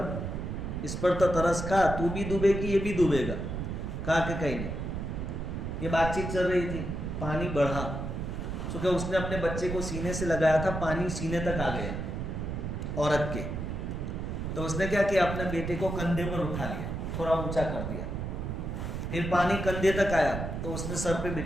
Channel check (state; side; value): noise; right; rumble, 4 dB below the sound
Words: اس پر تو ترس کھا، تو بھی ڈوبے گی یہ بھی ڈوبے گا. کہا کہ کہیں نہیں. یہ بات چیت چل رہی تھی، پانی بڑھا، چونکہ اس نے اپنے بچے کو سینے سے لگایا تھا، پانی سینے تک آ گیا عورت کے. تو اس نے کیا کیا، اپنے بیٹے کو کندھے پر اٹھا لیا، تھوڑا اونچا کر دیا. پھر پانی کندھے تک آیا تو اس نے سر پہ